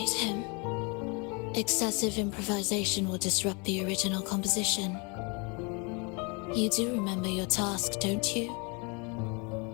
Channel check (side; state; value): right; quieter; 31.5 dB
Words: him. Excessive improvisation will disrupt the original composition. You do remember your task, don't you?